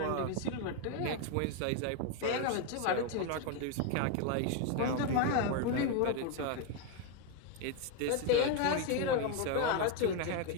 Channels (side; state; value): both; different; correlation 0.02